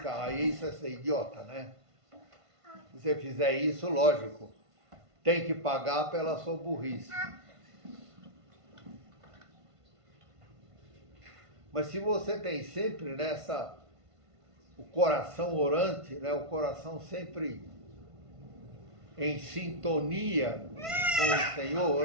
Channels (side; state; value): left; late; 1.5 ms